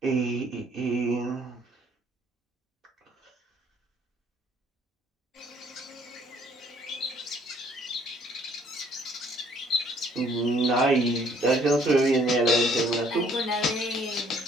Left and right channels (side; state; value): both; normal; correlation 0.62